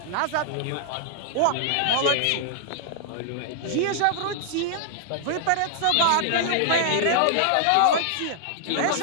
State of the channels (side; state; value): both; different; correlation 0.00